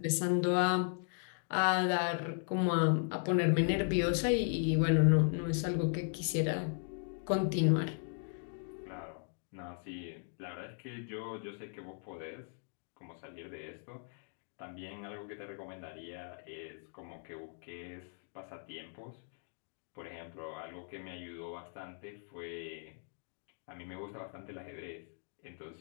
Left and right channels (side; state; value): right; silent; 53 dB below the other